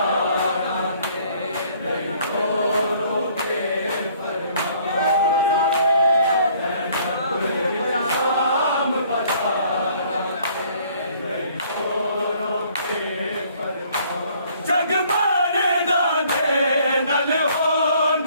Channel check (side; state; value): both; inverted; correlation -0.60